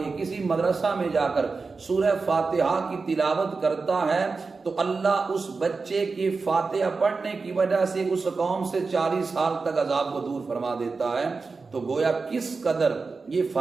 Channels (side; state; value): left; quieter; 4.3 dB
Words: کسی مدرسہ میں جا کر سورہ فاتحہ کی تلاوت کرتا ہے تو اللہ اس بچے کی فاتحہ پڑھنے کی وجہ سے اس قوم سے 40 سال تک عذاب کو دور فرما دیتا ہے۔ تو گویا کس قدر یہ